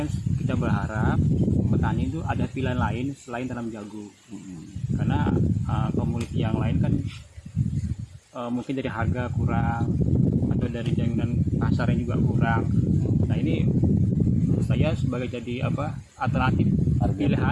kita berharap petani itu ada pilihan lain selain tanam jagung. Karena komoditi yang lain kan mungkin dari harga kurang atau dari jaminan pasarnya juga kurang. Nah ini menurut saya sebagai jadi alternatif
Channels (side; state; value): both; identical; correlation 1.00